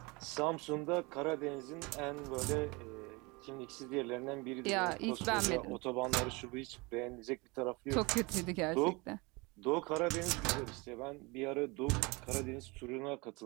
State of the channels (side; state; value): left; quieter; 26.2 dB